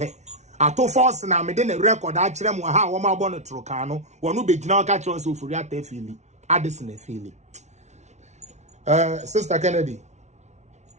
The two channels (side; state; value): left; late; 0.32 ms